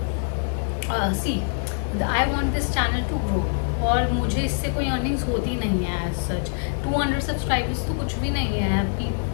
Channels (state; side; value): silent; right; digital silence